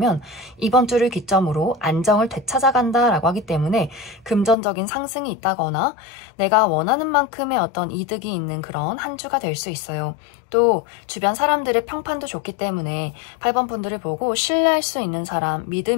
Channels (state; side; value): drops out; right; at 4.5 s